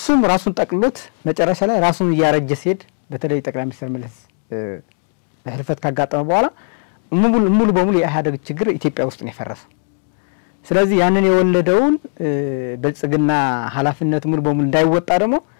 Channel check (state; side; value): silent; right; 60 dB below the other